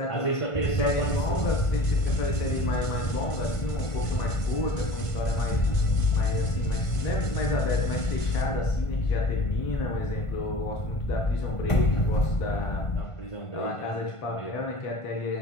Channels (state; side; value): late; right; 1.5 ms